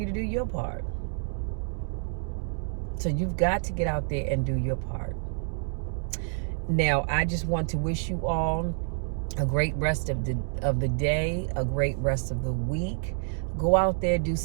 to do your part. So you've got to get out there and do your part. Now, I just want to wish you all a great rest of the day, a great rest of the week. Go out there, do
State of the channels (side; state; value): left; silent; 59 dB below the other